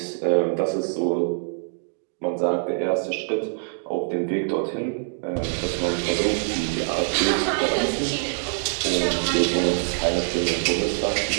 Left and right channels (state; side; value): silent; left; 62 dB below the other